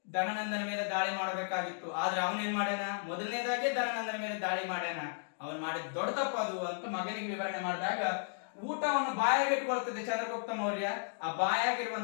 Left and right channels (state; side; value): silent; right; digital silence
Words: ಧನನಂದನ ಮೇಲೆ ದಾಳಿ ಮಾಡಬೇಕಾಗಿತ್ತು. ಆದ್ರೆ ಅವನೇನ್ ಮಾಡ್ಯಾನ? ಮೊದಲನೇದಾಗಿ ಧನನಂದನ ಮೇಲೆ ದಾಳಿ ಮಾಡ್ಯಾನ. ಅವನ್ ಮಾಡಿದ ದೊಡ್ಡ ತಪ್ಪದು ಅಂತ ಮಗನಿಗೆ ವಿವರಣೆ ಮಾಡಿದಾಗ, ಊಟವನ್ನು ಬಾಯಾಗಿಟ್ಕೊಳ್ತದೆ ಚಂದ್ರಗುಪ್ತ ಮೌರ್ಯ. ಆ